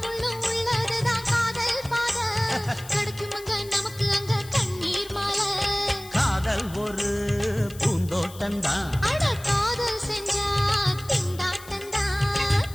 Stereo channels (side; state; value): left; noise; hiss, 18 dB below the sound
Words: முள்ளும் உள்ளதுதான் காதல் பாத, கிடைக்குமங்க நமக்கு அங்க கண்ணீர் மாலை. காதல் ஒரு பூந்தோட்டம்தான், அட காதல் செஞ்சா திண்டாட்டம்தான்.